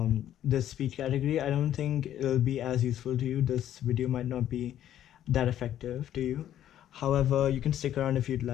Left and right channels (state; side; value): quieter; right; 11.4 dB